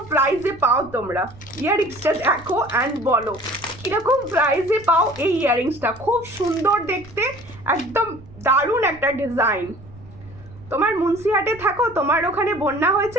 প্রাইসে পাও তোমরা, ইয়াররিংসটা দেখো অ্যান্ড বলো কিরকম প্রাইসে পাও এই ইয়াররিংসটা। খুব সুন্দর দেখতে, একদম দারুণ একটা ডিজাইন। তোমার মুন্সিহাটে থাকো, তোমার ওখানে বন্যা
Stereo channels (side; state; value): right; noise; rumble, 20 dB below the sound